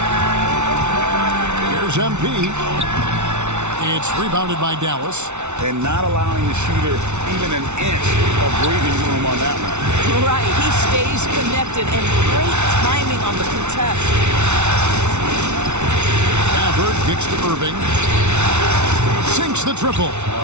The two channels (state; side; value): late; left; 0.82 ms